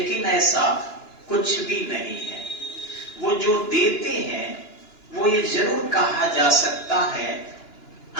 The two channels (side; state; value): right; late; 2.9 ms